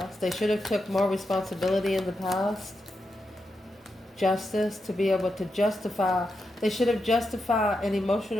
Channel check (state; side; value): normal; both; correlation 0.86